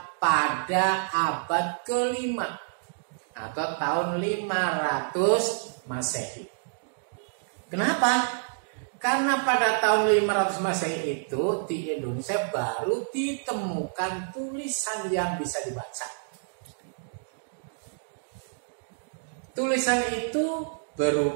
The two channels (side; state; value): left; silent; digital silence